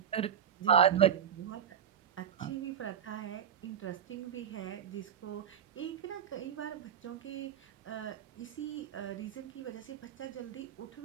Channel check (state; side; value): quieter; left; 8.7 dB